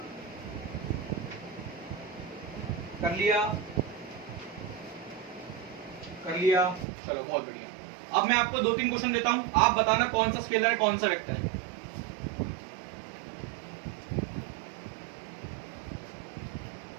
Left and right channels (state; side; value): drops out; left; at 6.9 s